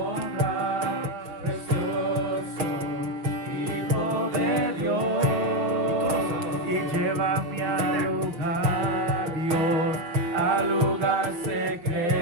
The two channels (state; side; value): late; left; 5.8 ms